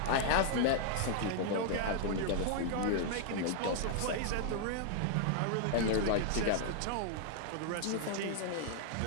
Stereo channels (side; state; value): both; different; correlation -0.01